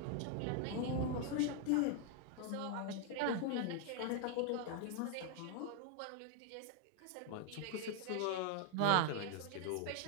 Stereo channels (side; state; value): both; different; correlation 0.00